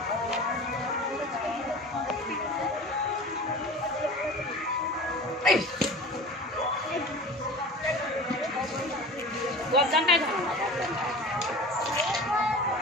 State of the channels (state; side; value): normal; both; correlation 0.37